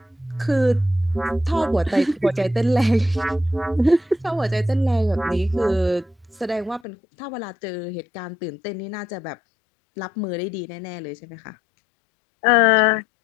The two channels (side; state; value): right; drops out; at 6.8 s